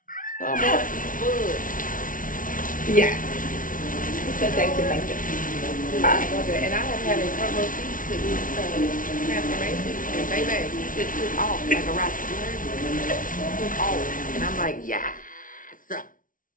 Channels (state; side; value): late; right; 0.39 ms